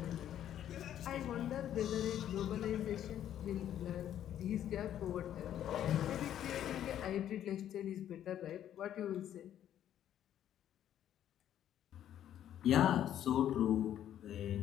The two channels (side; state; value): right; quieter; 10.9 dB